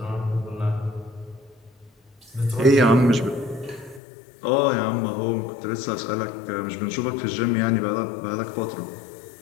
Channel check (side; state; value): right; drops out; at 4.0 s